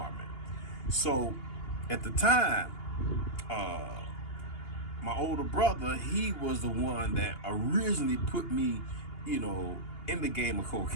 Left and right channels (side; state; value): right; late; 2.8 ms